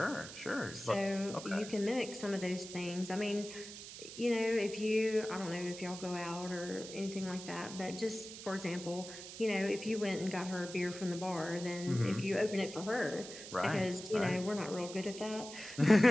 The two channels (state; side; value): noise; right; hiss, 12 dB below the sound